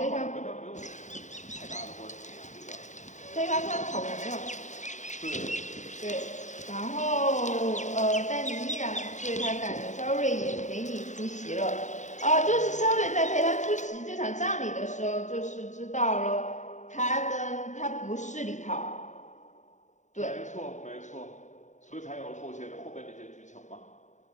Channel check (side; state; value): right; late; 0.35 ms